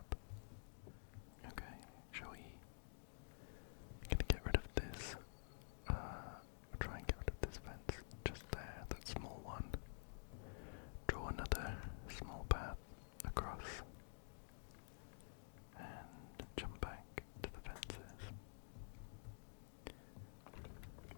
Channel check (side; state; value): right; silent; digital silence